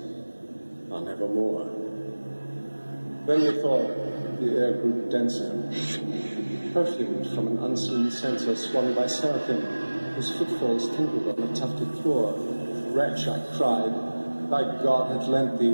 on evermore. Then methought the air grew denser, perfumed from an unseen censer swung by seraphim, whose footfalls tinkled on the tufted floor. Wretch, I cried, thy God hath lent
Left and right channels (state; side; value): inverted; both; correlation -1.00